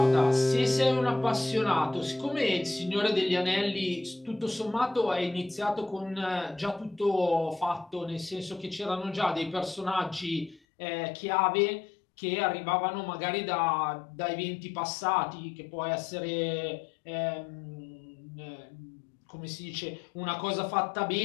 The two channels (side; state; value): right; drops out; at 10.6 s